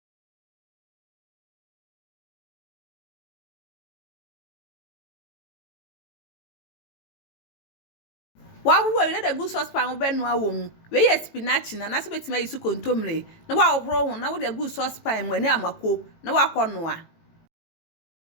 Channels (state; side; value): late; right; 18 ms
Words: Wa we let the good saucepan be no awom. We Yam Spinach na so betima yisu Kontomire. Na wa ohro ho na wo the good saucepan mu ani amako na wa konoa.